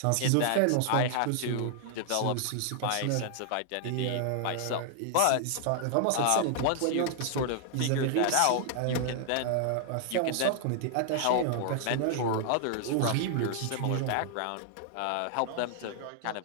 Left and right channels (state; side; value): different; both; correlation 0.00